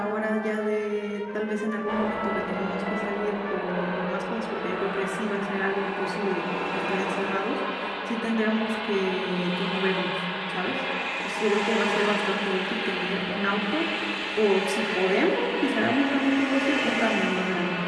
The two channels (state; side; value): identical; both; correlation 1.00